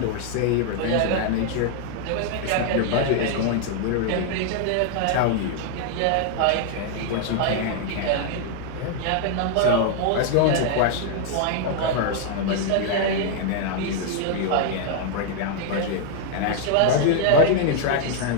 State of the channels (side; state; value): both; different; correlation 0.00